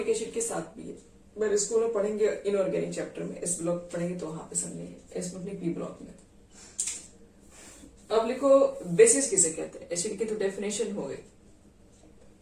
एसिड के साथ भी है, पर स्कूल में पढ़ेंगे इनऑर्गेनिक चैप्टर में, इस ब्लॉक पढ़ेंगे तो वहां पे समझेंगे, इसमें अपनी P ब्लॉक में। अब लिखो बेसिस किसे कहते हैं, एसिड की तो डेफिनेशन हो गई।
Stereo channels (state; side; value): identical; both; correlation 1.00